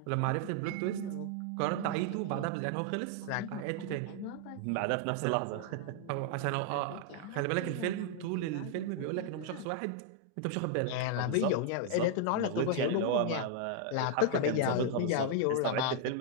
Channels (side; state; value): both; different; correlation 0.00